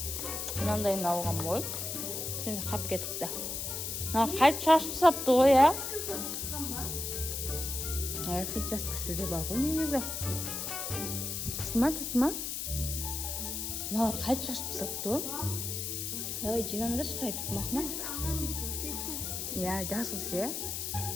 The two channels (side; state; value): left; noise; hiss, 3 dB below the sound